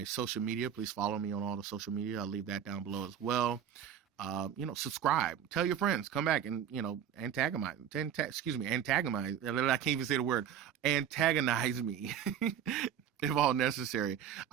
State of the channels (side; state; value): left; quieter; 9.1 dB